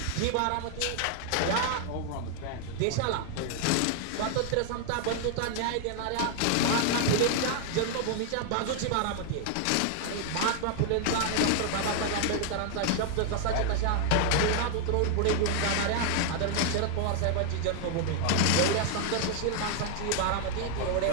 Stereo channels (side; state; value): both; different; correlation 0.00